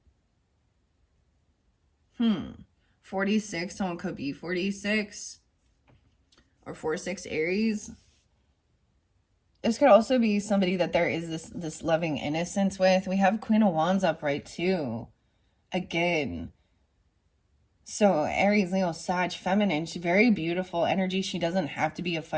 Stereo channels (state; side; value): identical; both; correlation 1.00